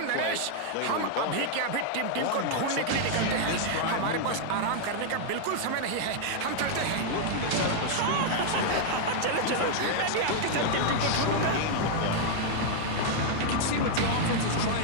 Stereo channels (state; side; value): different; both; correlation 0.00